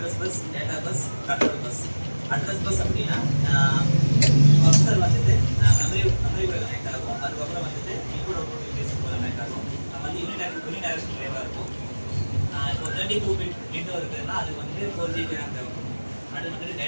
bus, data bus, control bus. Address bus அப்படின்னா ப்ரொசஸர் வந்துட்டு மெமரி கூட கனெக்ட் ஆகும். அதுக்கப்புறம் வந்துட்டு இன்புட் அவுட்புட் இன்டர்ஃபேஸ் கூட கனெக்ட் ஆகும். வந்து யூனிடைரக்ஷன் வேவாக இருக்கும். இப்போ 32 பிட் விண்டோ இருக்குதுன்னா அதுக்கு வந்துட்டு 4GB RAM தேவைப்படும். அது வந்துட்டு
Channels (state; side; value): inverted; both; correlation -1.00